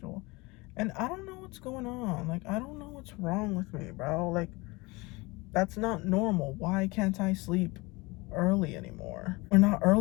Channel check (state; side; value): quieter; right; 24.2 dB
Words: And I don't know what's going on. Like, I don't know what's wrong with me, bro. Like, that's not normal. Why can't I sleep early anymore? Or not